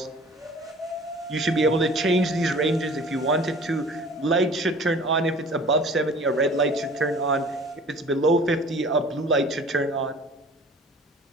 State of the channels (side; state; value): both; normal; correlation 0.46